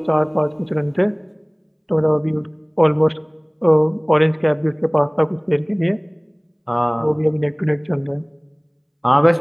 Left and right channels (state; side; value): identical; both; correlation 1.00